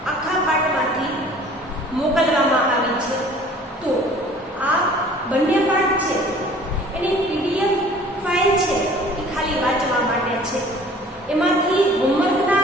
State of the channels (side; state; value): both; normal; correlation 0.50